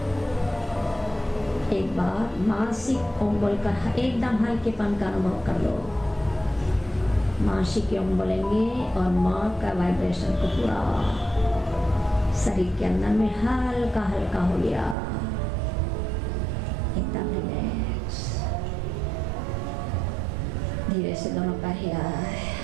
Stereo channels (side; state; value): left; drops out; at 15.0 s